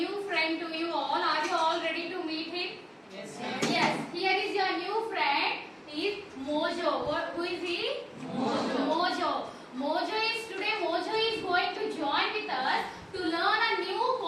friend to you all. Are you all ready to meet him? Yes, ma'am. Yes. Here is your new friend. He is Mojo. Who is he? Mojo. Mojo is going to join with us to learn a new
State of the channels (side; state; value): both; identical; correlation 1.00